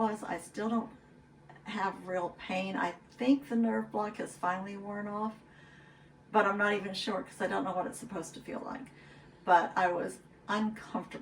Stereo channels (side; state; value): both; identical; correlation 1.00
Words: I still don't have real pain. I think the nerve block has finally worn off, but I'm not even sure because I don't know what it's supposed to feel like. But I was